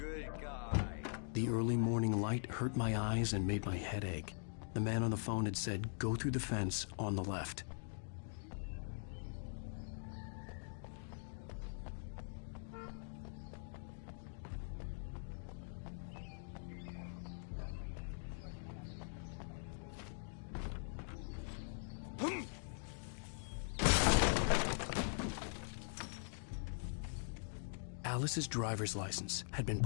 good guy. The early morning light hurt my eyes and made my head ache. The man on the phone had said, go through the fence on the left. Alice's driver's license had been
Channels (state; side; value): silent; right; digital silence